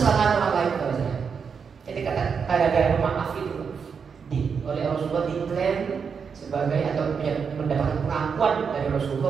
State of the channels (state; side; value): quieter; left; 6.2 dB